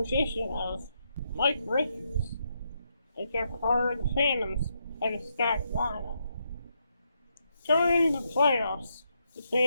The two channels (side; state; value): both; inverted; correlation -0.80